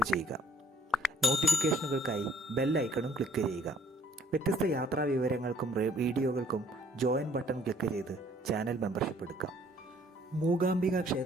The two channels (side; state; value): both; normal; correlation 0.60